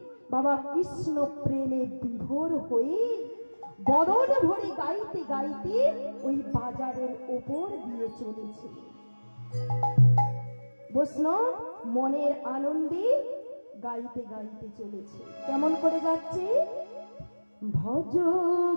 বাবা কৃষ্ণ প্রেমে বিভোর হয়ে বদন ভরে গাইতে গাইতে ওই বাজারের ওপর দিয়ে চলেছে। বৈষ্ণব মনের আনন্দে গাইতে গাইতে চলেছে। কেমন করে যাচ্ছে? ভজ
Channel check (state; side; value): inverted; both; correlation -1.00